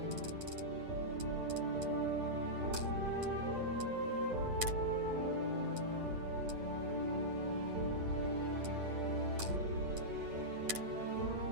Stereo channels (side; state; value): left; late; 8.8 ms